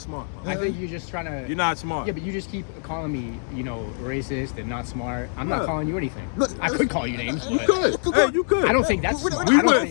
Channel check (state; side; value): silent; right; digital silence